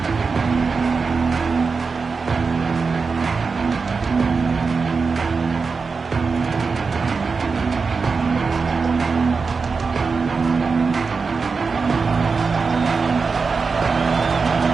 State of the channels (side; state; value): left; quieter; 4.8 dB